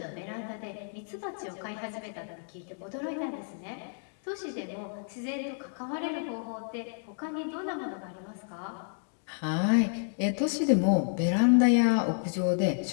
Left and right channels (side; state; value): right; silent; digital silence